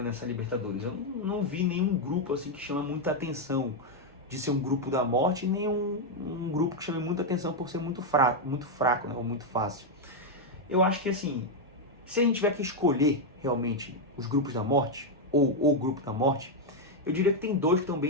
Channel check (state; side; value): normal; both; correlation 0.01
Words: nessa Libertadores. Eu não vi nenhum grupo assim que chama muita atenção de ser um grupo da morte, nem um grupo que chame muita atenção por ser muito fraco, né, ou muito fácil. Eu acho que, assim, se a gente tiver que escolher realmente os grupos da morte, ou o grupo da morte, eu diria que tem dois que estão